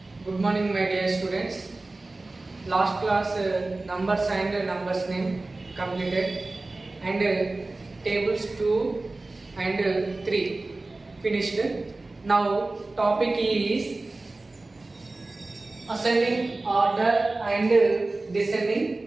Good morning, my dear students. Last class numbers and numbers name completed, and tables 2 and 3 finished. Now topic is ascending order and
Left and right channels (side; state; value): left; quieter; 3.1 dB